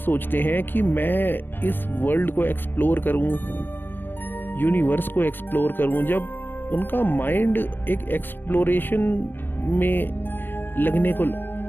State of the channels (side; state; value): right; late; 0.095 ms